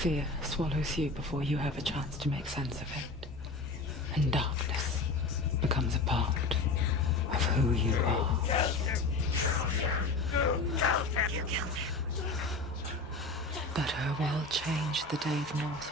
swallows you before you have a chance to make sense of it. And darkness becomes a part of who you are. You killed him. But her world changed the day the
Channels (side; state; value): right; quieter; 3.4 dB